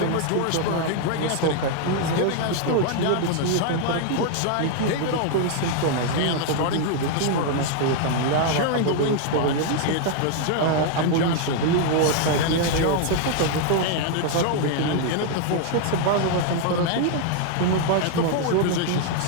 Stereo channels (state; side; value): different; both; correlation 0.00